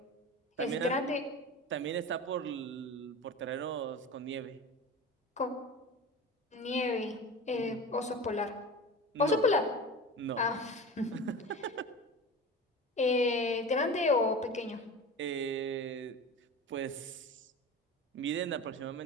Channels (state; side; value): normal; both; correlation 0.32